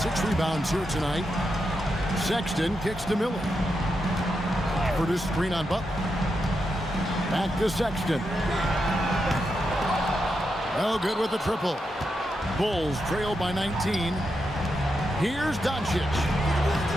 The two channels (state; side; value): normal; both; correlation 0.85